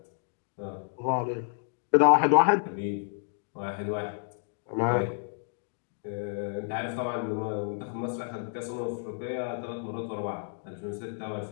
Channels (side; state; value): right; silent; 58 dB below the other